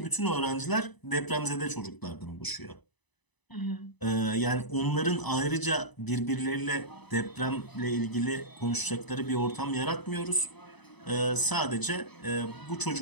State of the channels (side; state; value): right; late; 1.0 ms